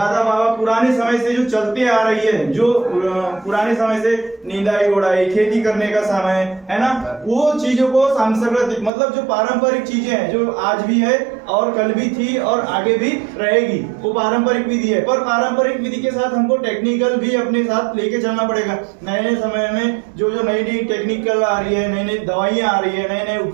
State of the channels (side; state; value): left; drops out; at 8.9 s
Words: बाबा पुराने समय से जो चलते आ रही है, जो पुराने समय से निंदाई गोड़ाई, खेती करने का समय है ना, वो चीजों को सांस्कृतिक मतलब जो पारंपरिक चीजें हैं, जो आज भी है और कल भी थी और आगे भी रहेगी, वो पारंपरिक विधि है। पर पारंपरिक विधि के साथ हमको टेक्निकल भी अपने साथ लेके चलना पड़ेगा। नए नए समय में जो नई नई टेक्निकल आ रही है, नई नई दवाइयाँ आ रही है, नए नए